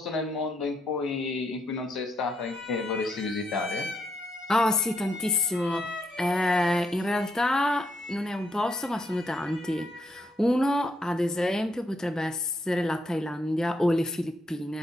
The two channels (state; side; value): normal; both; correlation 0.77